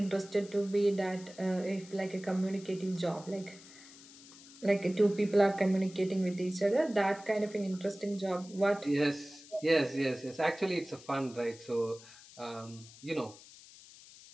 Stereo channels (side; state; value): left; noise; hiss, 20 dB below the sound